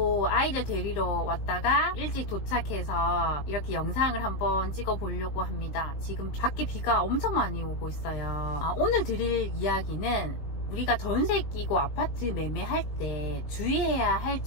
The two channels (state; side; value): late; right; 19 ms